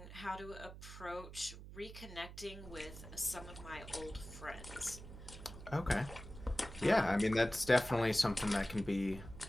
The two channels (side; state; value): right; noise; hum, 13 dB below the sound